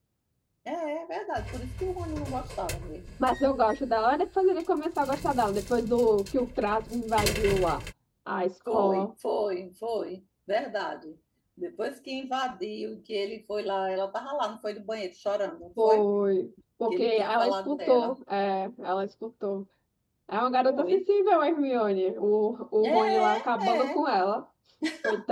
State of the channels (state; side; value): identical; both; correlation 1.00